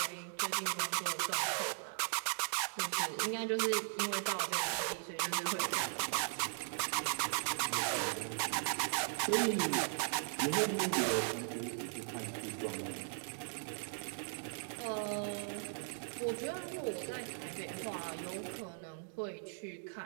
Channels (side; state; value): left; silent; digital silence